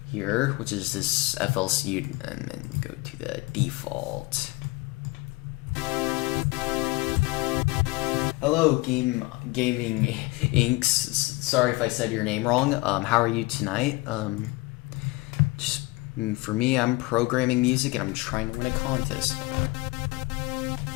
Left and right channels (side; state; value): right; quieter; 22.7 dB